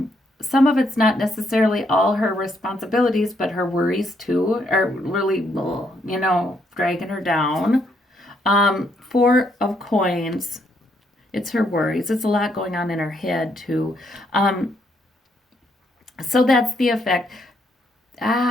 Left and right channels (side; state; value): both; normal; correlation 0.73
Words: Some of it's not necessarily all her responsibilities, but her worries too are really, dragging her down. Four of Coins. It's her worries. It's a lot going on in her head too. So that's the effect.